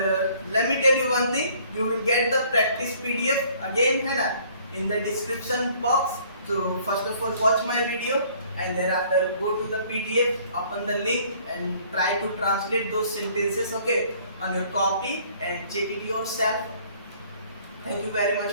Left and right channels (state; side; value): inverted; both; correlation -0.58